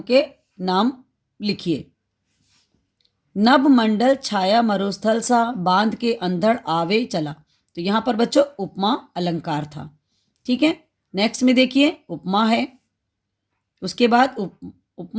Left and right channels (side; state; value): both; identical; correlation 1.00